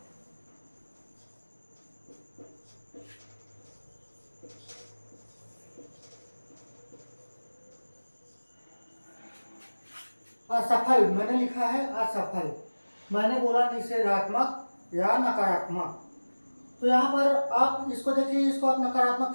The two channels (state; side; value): inverted; both; correlation -1.00